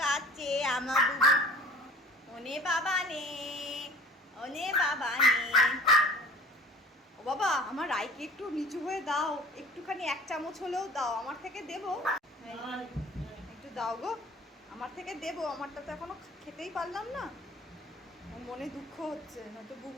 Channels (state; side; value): normal; both; correlation 0.45